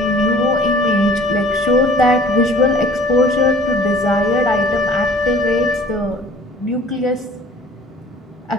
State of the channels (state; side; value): normal; both; correlation 0.50